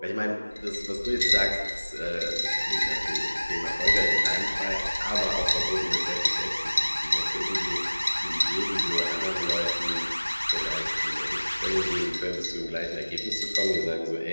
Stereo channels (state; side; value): inverted; both; correlation -1.00